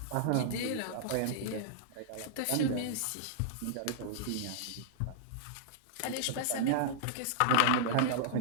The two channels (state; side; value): different; both; correlation -0.01